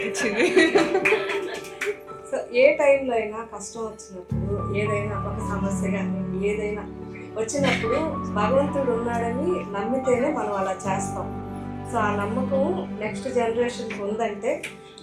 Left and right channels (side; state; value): both; identical; correlation 1.00